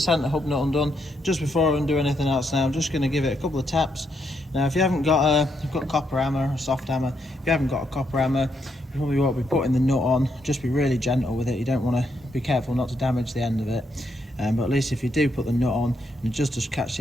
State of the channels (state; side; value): normal; both; correlation 0.78